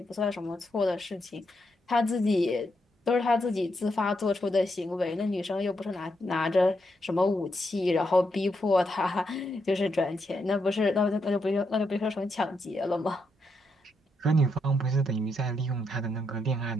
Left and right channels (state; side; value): normal; both; correlation 0.81